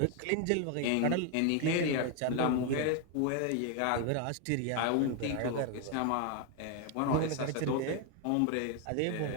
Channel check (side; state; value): both; different; correlation 0.01